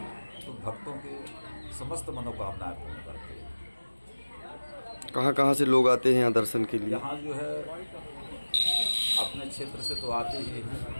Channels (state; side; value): inverted; both; correlation -1.00